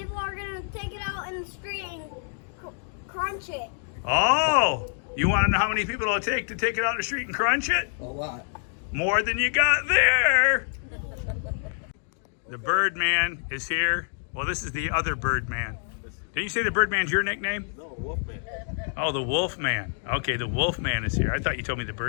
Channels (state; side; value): silent; right; 57 dB below the other